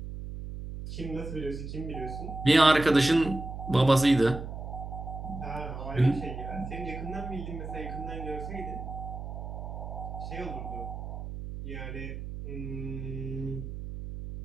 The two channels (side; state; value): right; noise; hum, 8 dB below the sound